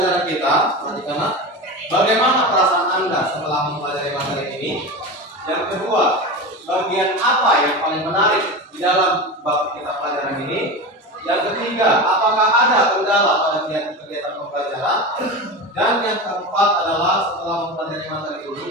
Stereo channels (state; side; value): normal; both; correlation 0.25